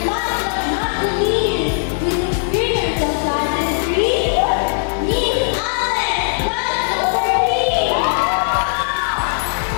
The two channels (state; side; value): silent; right; digital silence